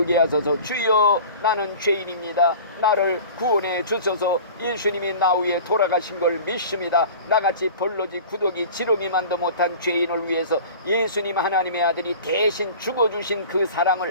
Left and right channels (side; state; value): both; inverted; correlation -0.40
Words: 하소서. 주여 나는 죄인입니다. 나를 구원해 주소서. 예수님이 나 위에 돌아가신 걸 믿습니다. 나같이 벌러지 구더기 지렁이만도 못한 죄인을 위해서 예수님 하나님의 아들이 대신 죽어주신 그